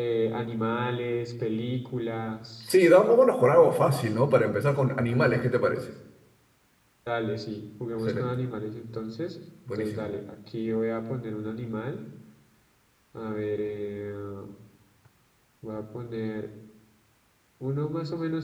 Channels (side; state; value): both; identical; correlation 1.00